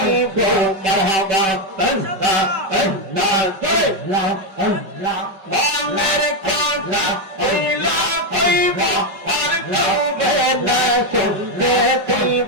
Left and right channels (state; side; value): late; left; 5.2 ms